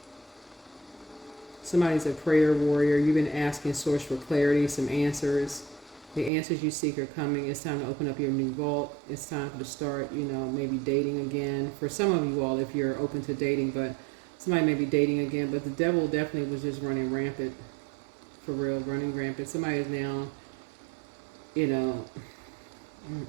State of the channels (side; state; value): left; drops out; at 6.3 s